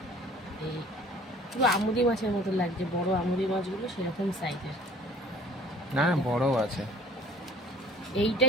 এই পুরো আমুদি মাছের মতো লাগছে, বড় আমুদি মাছগুলো সেরকম সাইজের না, বড় আছে।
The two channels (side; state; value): both; normal; correlation 0.52